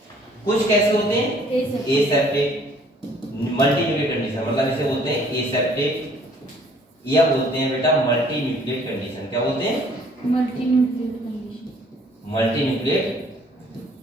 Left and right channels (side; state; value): both; normal; correlation 0.58